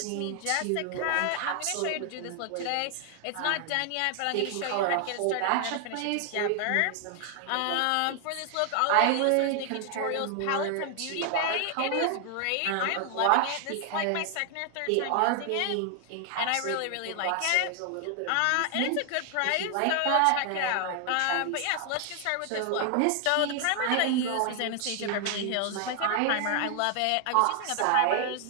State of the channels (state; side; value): different; both; correlation 0.00